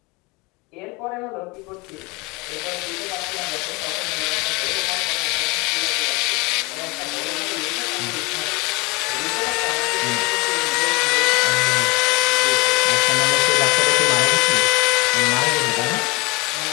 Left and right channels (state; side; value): quieter; right; 26.2 dB